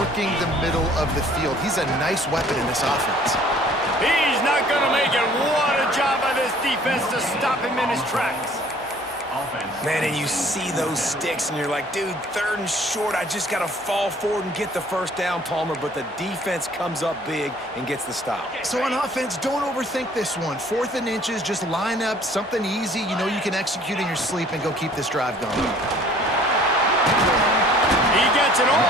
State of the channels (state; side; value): normal; both; correlation 0.55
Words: the middle of the field. He's a nice weapon in this offense. He's not going to make it. What a job by this defense to stop him in his tracks. Man, and you see those sticks, and you're like, dude, 3rd and short. I just got to fall forward and get the 1st down, Palmer. But the defense comes up big and gets the stop. So on offense, don't overthink this one. 4th and inches, just line up something easy you know you can execute in your sleep and go keep this drive going. He gets it